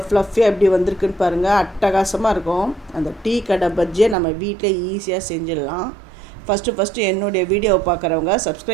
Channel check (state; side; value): drops out; left; at 4.2 s